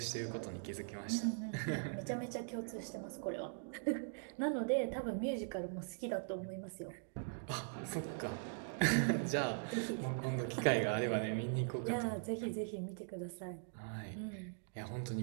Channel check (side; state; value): left; silent; digital silence